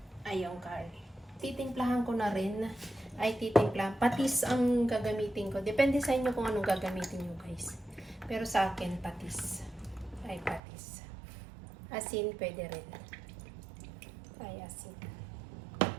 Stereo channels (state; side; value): drops out; left; at 10.6 s